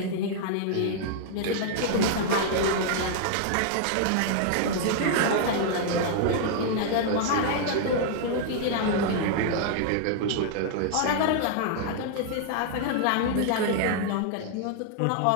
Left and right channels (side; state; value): both; different; correlation -0.01